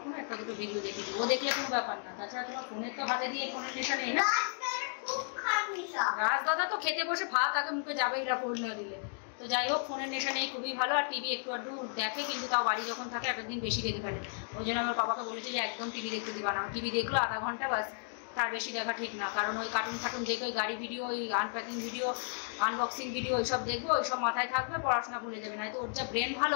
একটা দুটো ভিডিও দেখে দিই, ও দেখলে কোনো ব্যাপার না। তাছাড়া তোমার ফোনের তো হাতে দিয়ে ফোনের নেশা নেই না। রাজদাদা তো খেতে বসে ভাত আগে মুখে যাবেই না ফোন না দিলে। তো যাই হোক, ফোনের নেশা নেই, খুবই ভালো। আর টিভি একটু আধটু দেখে, কিন্তু তাও বাড়ি যখন থাকে একদিন বেশি দেখে ফেলে। ওই জন্য আমার বাবাকে বলেছে যে একদম টিভি দেখতে দিবা না। টিভি দেখলো আধা ঘন্টা বাস, তার বেশি দেখা ঠিক না, কারণ ওই কার্টুন ফাটুন দেখে, ওই গাড়ি ভিডিও, ওই আনপ্যাকিং ভিডিও, আনবক্সিং ভিডিও, ওইসব দেখবো, ওইসব মাথায় থাকবে, পড়াশোনা ভুলে যাবে। না তো ওর যা ব্রেন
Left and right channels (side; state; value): right; silent; 55 dB below the other